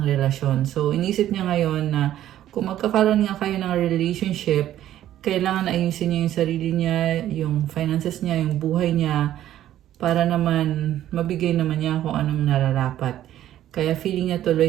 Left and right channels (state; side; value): quieter; left; 12.4 dB